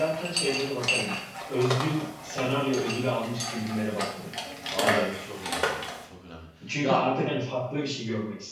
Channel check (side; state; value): both; identical; correlation 1.00